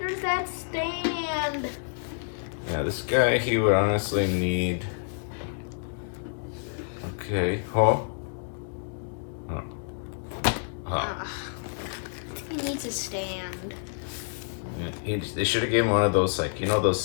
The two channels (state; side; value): silent; right; digital silence